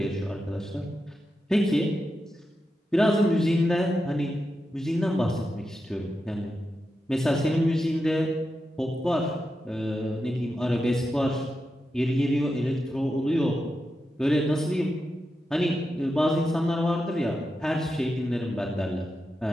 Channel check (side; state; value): both; normal; correlation 0.89